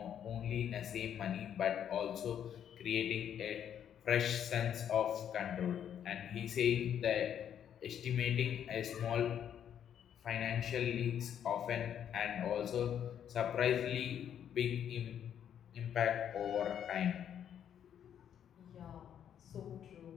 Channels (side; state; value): right; quieter; 9.3 dB